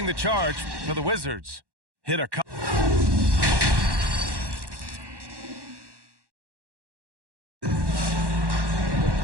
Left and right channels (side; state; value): left; late; 1.1 ms